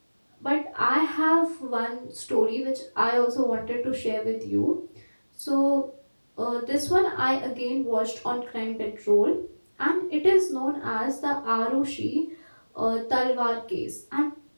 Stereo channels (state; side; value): inverted; both; correlation -1.00